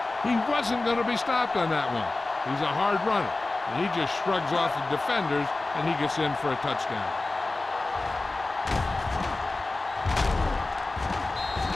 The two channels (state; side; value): quieter; right; 3.2 dB